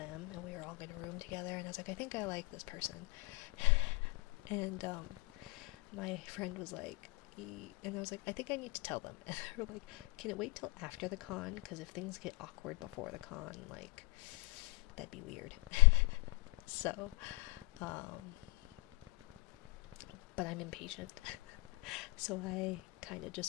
and we were all gonna room together, and I was like, I think I like this person, and my friend was like, and I was like, I think I need to tell them, and they were like, can it wait till after the con, because if things get awkward before the con, like, that'd be weird. So, but I'm impatient. So I kind of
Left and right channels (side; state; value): right; quieter; 27.2 dB